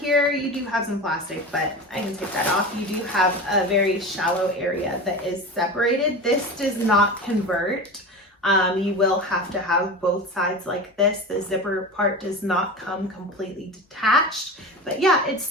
you do have some plastic, but I can take that off. You do have a very shallow area that is separated. This does not convert. You will have to have both sides like this. The zipper part does not come completely detached, but yeah, it's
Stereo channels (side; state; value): both; normal; correlation 0.29